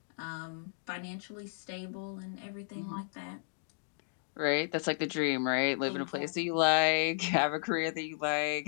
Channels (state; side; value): silent; right; digital silence